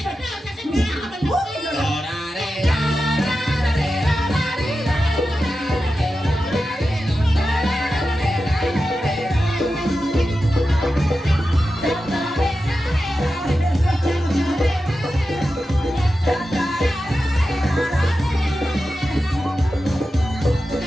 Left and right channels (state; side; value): normal; both; correlation 0.92